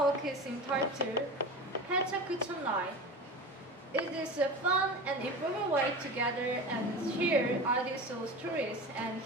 is entitled Pecha Kucha Night. It is a fun and informal way to gather and share audio soul stories, and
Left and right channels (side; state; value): both; normal; correlation 0.30